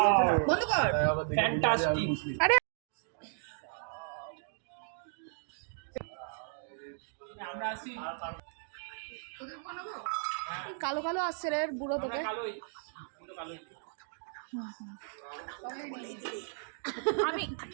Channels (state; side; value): silent; left; digital silence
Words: বন্ধ কর। ফ্যান্টাস্টিক। আরে আমরা আসি। কালো কালো আসছে রে বুড়ো তোকে। আমি